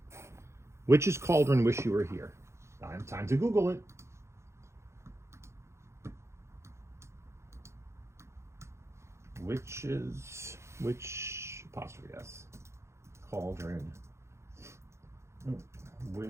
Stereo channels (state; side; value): late; left; 0.13 ms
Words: Witch's Cauldron, Wish You Were Here. Time to Google it. Witch, apostrophe S. Cauldron.